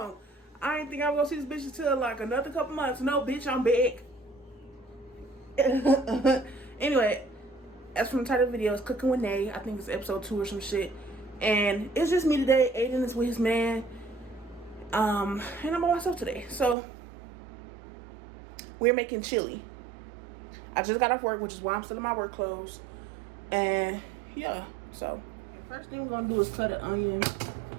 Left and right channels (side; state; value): left; drops out; at 16.8 s